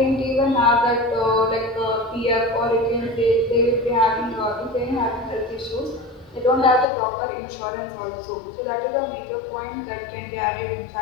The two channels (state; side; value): drops out; right; at 6.9 s